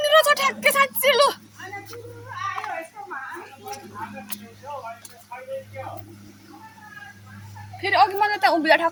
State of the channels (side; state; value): both; identical; correlation 1.00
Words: छ ठ्याक्कै साँच्ची लु आयो यस्तोमा फेरि अघि मलाई त्यहाँ उभिँदा